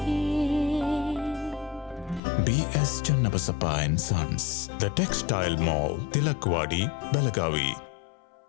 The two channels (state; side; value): drops out; right; at 2.2 s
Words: BS Channabasappa and Sons, The Textile Mall, Tilakwadi, Belagavi.